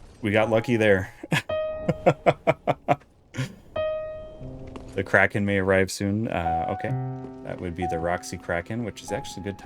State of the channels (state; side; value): identical; both; correlation 1.00